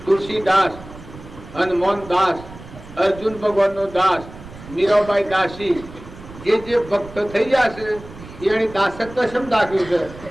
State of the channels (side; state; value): right; noise; rumble, 16 dB below the sound